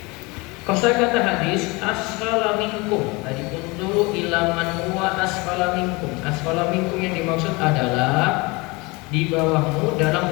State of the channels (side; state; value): right; quieter; 25.5 dB